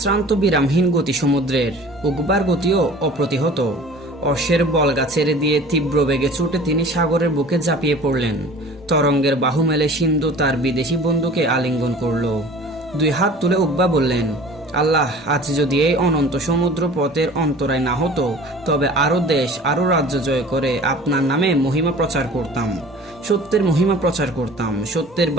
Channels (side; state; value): both; normal; correlation 0.44